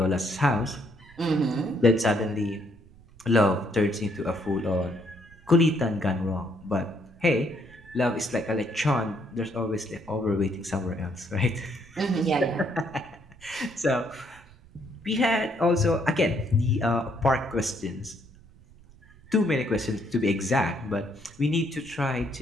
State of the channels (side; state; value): right; noise; rumble, 24 dB below the sound